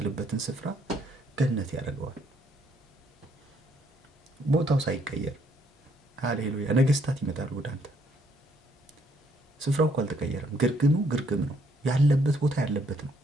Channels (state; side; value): normal; both; correlation 0.69